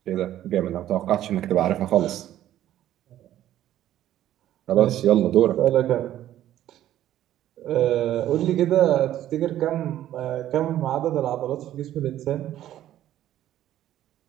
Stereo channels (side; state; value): left; quieter; 12.6 dB